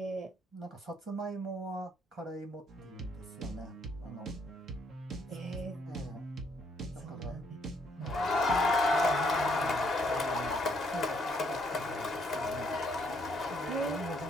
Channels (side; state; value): both; normal; correlation 0.70